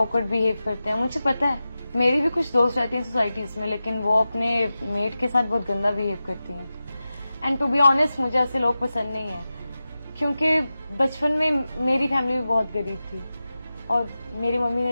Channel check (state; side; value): inverted; both; correlation -0.94